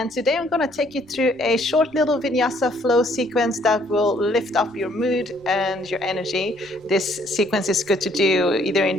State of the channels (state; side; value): noise; left; rumble, 30 dB below the sound